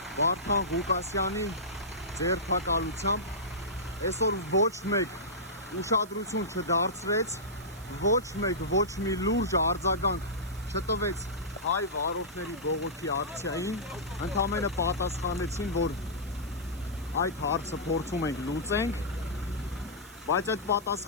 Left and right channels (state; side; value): noise; right; hiss, 21 dB below the sound